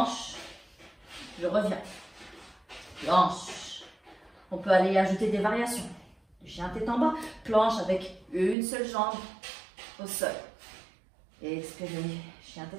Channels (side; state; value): left; drops out; at 8.6 s